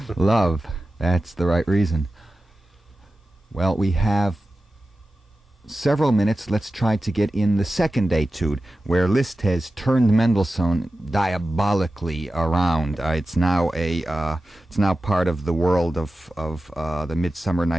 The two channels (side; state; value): both; normal; correlation 0.94